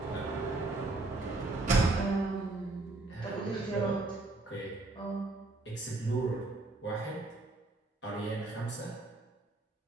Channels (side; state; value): left; quieter; 3.1 dB